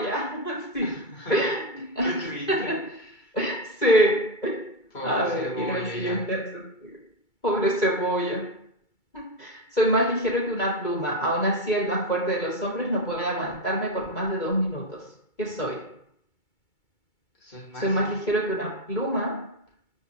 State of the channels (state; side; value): late; right; 2.3 ms